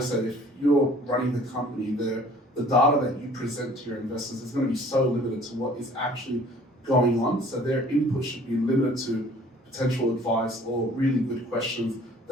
if you're running the company, the data that you present to your investors is going to be so limited to what is actually going on. So their input should be limited to potential advice or really good questions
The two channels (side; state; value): both; normal; correlation 0.52